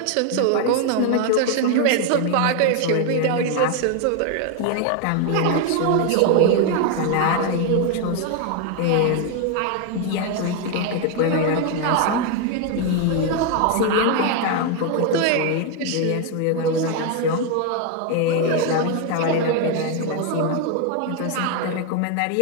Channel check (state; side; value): different; both; correlation 0.01